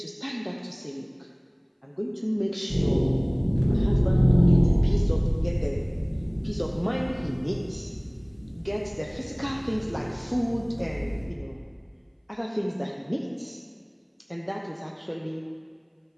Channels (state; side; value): identical; both; correlation 1.00